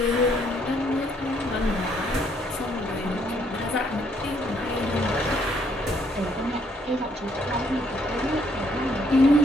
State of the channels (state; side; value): normal; both; correlation 0.69